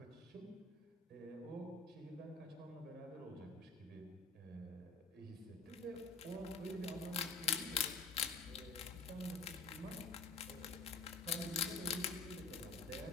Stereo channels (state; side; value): quieter; right; 4.1 dB